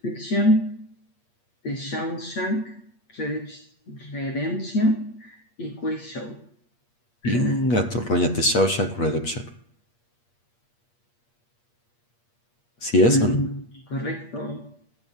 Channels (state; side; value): late; right; 8.5 ms